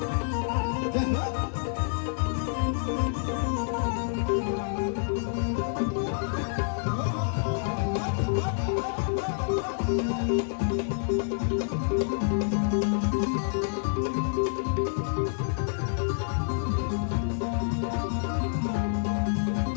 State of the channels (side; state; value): right; silent; digital silence